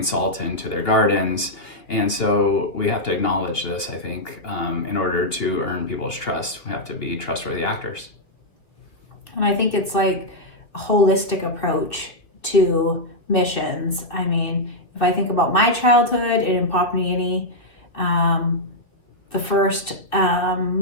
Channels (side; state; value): right; late; 3.0 ms